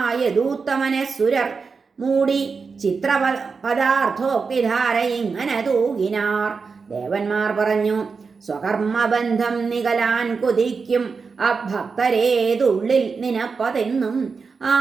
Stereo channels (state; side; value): quieter; left; 5.0 dB